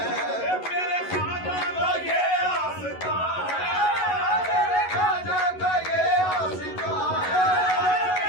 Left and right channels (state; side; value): late; right; 11 ms